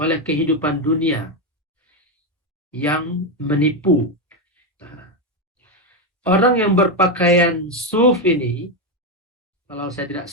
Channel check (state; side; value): normal; both; correlation 0.07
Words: kehidupan dunia yang menipu. Nah, orang yang berpakaian suf ini, kalau saya tidak